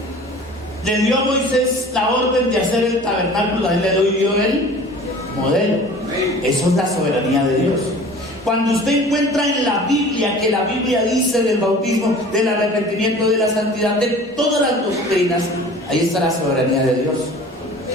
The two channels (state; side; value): normal; both; correlation 0.44